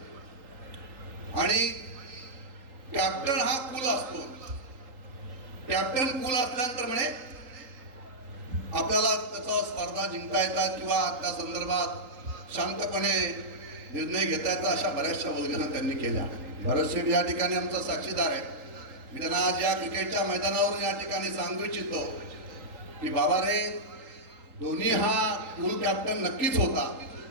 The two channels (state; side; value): late; left; 3.8 ms